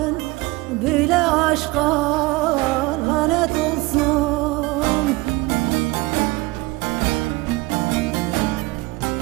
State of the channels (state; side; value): quieter; left; 22.0 dB